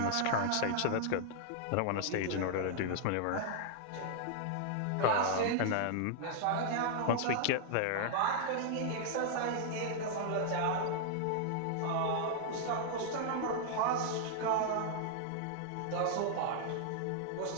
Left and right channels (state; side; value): different; both; correlation -0.01